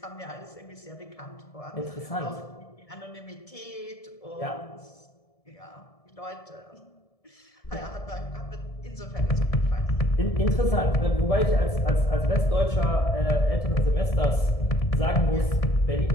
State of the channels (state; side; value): late; right; 1.7 ms